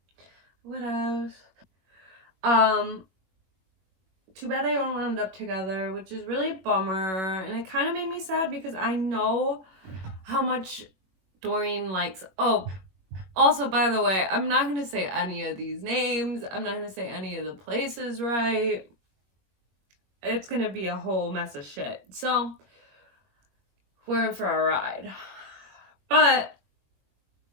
what else? Too bad they don't end up together, which is really a bummer. And it kind of made me sad because I know how much Dorian likes. Oh, also, by the way, I'm not going to say any of these names. I'm not going to say any of the places right. It's going to be a whole mess of shit. So, we're in for a ride. But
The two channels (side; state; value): left; late; 21 ms